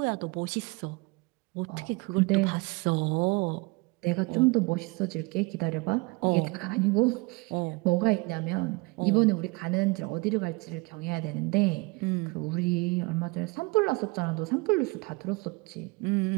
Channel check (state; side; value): quieter; left; 26.4 dB